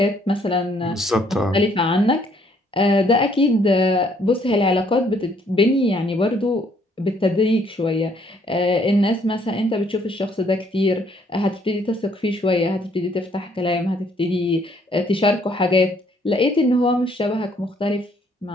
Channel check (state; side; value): normal; both; correlation 0.65